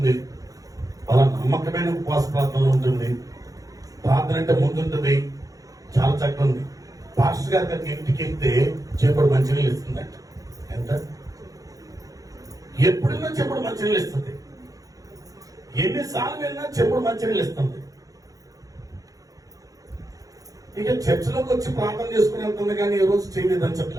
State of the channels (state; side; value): late; left; 0.17 ms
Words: బల నమ్మకమైన ఉపవాస ప్రార్థనలో ఉంటుంది, ప్రార్థన అంటే ముందుంటుంది, చాలా చక్కగా ఉంది. పాస్టర్ గారి దగ్గర ఇంటికి వెళ్తే చెప్పుడు మంచినీళ్ళు ఇస్తుందంట. ఎంత ఎప్పుడైనా చెప్పుడు మంచినీళ్ళు ఇస్తుంది, ఎన్నిసార్లు వెళ్ళినా చెప్పుడు మంచినీళ్ళు ఇస్తుంది. ఇక చర్చిలోకి వచ్చి ప్రార్థన చేసుకుని వెళ్తుంది, కానీ ఈ రోజు చేయలేదని